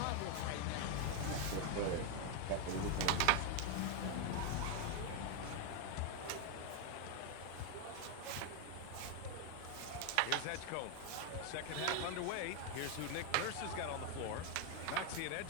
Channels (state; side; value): different; both; correlation 0.01